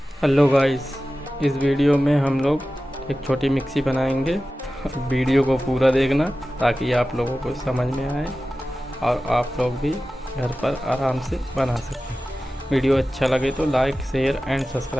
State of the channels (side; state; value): both; normal; correlation 0.95